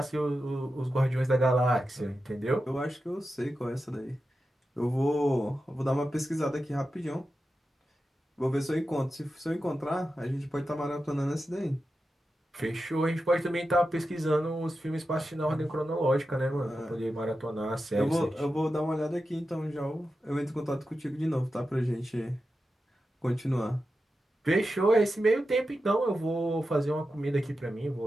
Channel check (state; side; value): normal; both; correlation 0.91